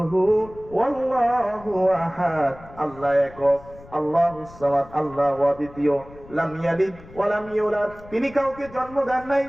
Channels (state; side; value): noise; left; rumble, 20 dB below the sound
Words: হু ওয়াল্লাহু আহাদ, আল্লাহ একক, আল্লাহুস সামাদ, আল্লাহ অদ্বিতীয়, লাম ইয়ালিদ ওয়া লাম ইউলাদ, তিনি কাউকে জন্ম দেন নাই,